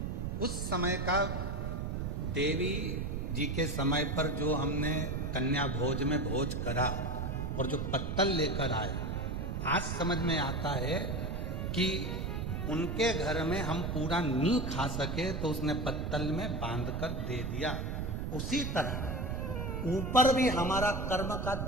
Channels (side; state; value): right; noise; rumble, 2 dB below the sound